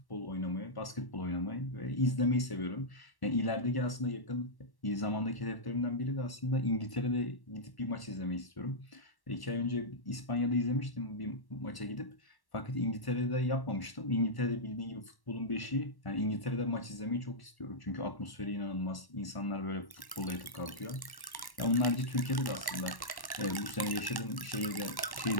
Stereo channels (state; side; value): late; right; 1.1 ms